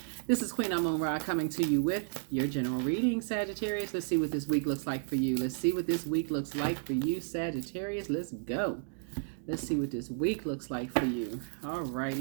This is Queen Amun Ra coming to you with your general reading, Sagittarius. Let's see what this week looks like for you. Let's see what this week looks like for you, Sagittarius. Let's go. Let's see what this week looks like for you. All right,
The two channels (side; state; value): left; silent; digital silence